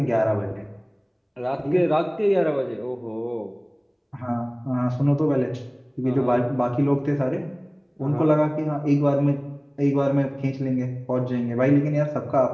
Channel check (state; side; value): identical; both; correlation 1.00